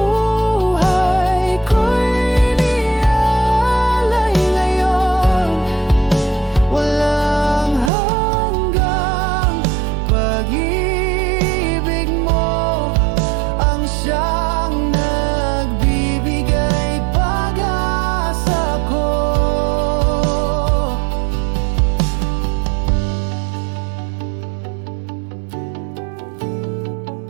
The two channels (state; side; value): drops out; left; at 7.9 s